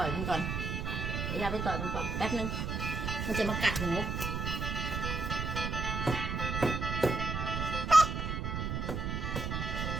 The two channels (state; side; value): noise; right; rumble, 2 dB below the sound